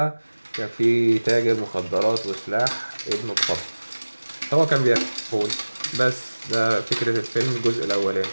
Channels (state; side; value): inverted; both; correlation -1.00